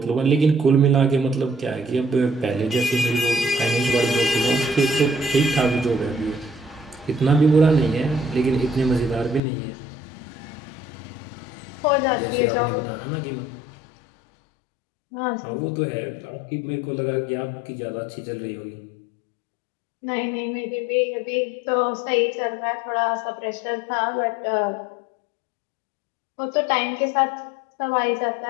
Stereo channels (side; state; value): right; drops out; at 9.4 s